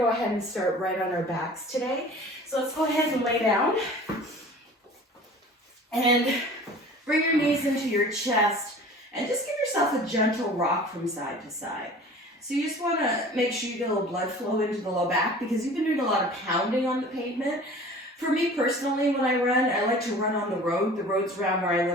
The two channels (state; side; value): normal; both; correlation 0.43